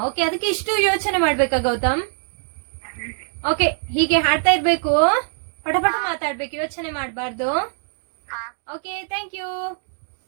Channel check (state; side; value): silent; left; digital silence